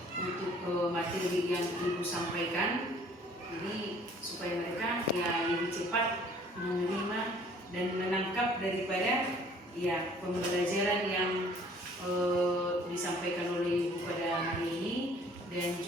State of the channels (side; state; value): both; normal; correlation 0.55